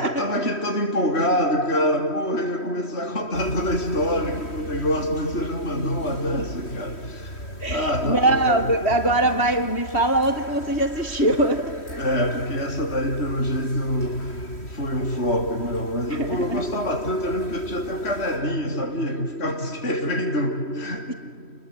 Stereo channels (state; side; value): late; right; 3.1 ms